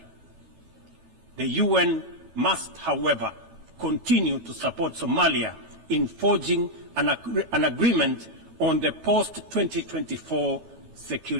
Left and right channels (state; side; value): late; left; 12 ms